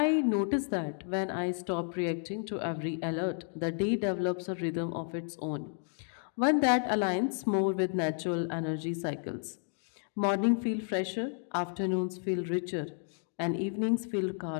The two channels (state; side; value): silent; right; 55 dB below the other